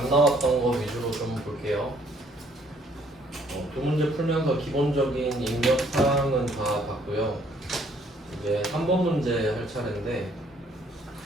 나왔던 거 위주로 좀 볼게요. 두 문제 풀면서 기본적인 입력 사항은 다 봤고요. 이제 3번 문제 할 차례인데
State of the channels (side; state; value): both; normal; correlation 0.64